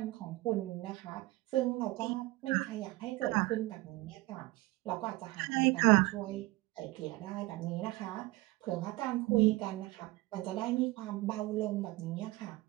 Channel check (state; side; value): quieter; left; 20.5 dB